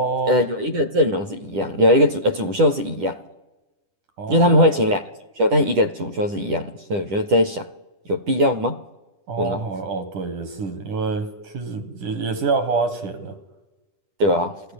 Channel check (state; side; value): late; left; 10 ms